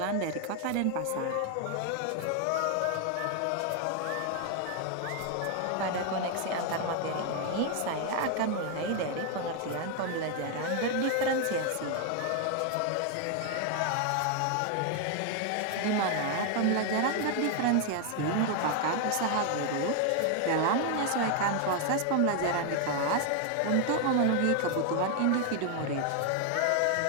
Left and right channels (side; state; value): both; different; correlation 0.01